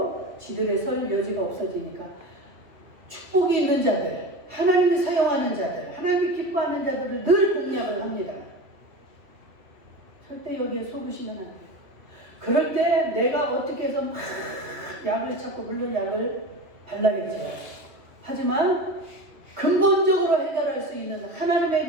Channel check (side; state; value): left; late; 2.5 ms